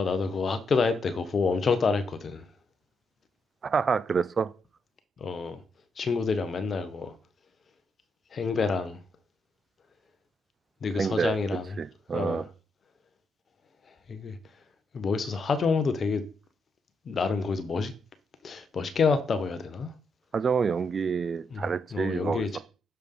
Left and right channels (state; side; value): normal; both; correlation 0.79